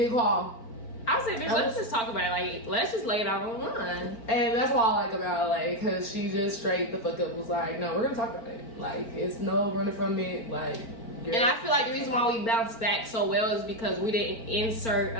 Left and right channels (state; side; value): late; right; 4.4 ms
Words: call. I said, bitch, let's just talk about it. Like, let's just lay it out online. And that's what I like about LA, because she just straight the fuck up was like, no, we're gonna talk about it. Like, it's no running from it. Like, and I feel like the reason why we bounced back so well is because we didn't insert